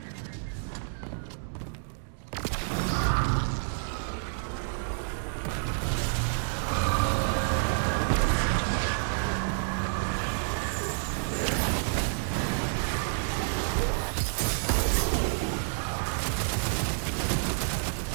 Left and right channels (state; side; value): silent; left; digital silence